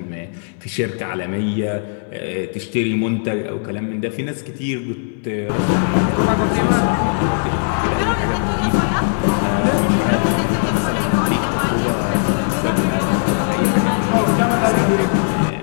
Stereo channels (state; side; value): silent; right; 67 dB below the other